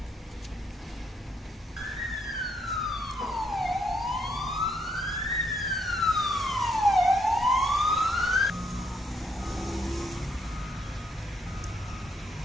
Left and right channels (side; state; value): both; normal; correlation 0.74